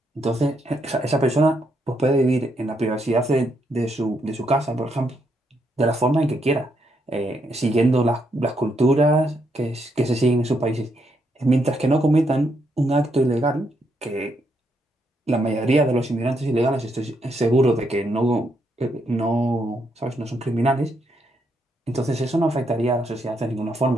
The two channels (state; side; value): normal; both; correlation 0.77